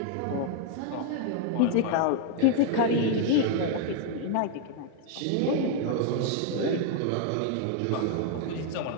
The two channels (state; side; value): different; both; correlation 0.00